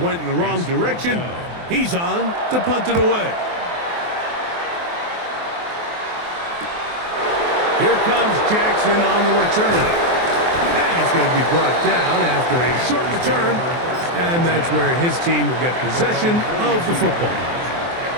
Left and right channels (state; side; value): late; left; 23 ms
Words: went in the wrong direction, he's on to punt it away. Here comes Jackson on the return. And he's going to be brought down after a short return. And that's where his team will get possession of the football.